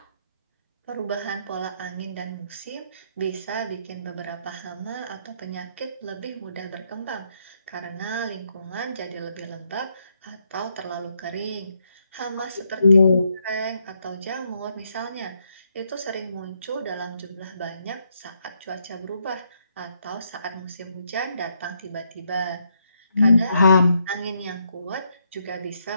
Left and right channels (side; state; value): both; inverted; correlation -0.76